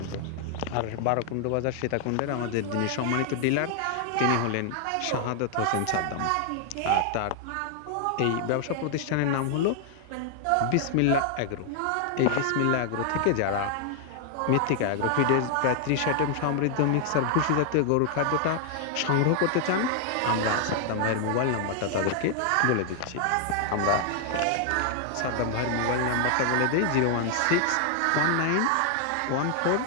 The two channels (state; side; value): different; both; correlation 0.00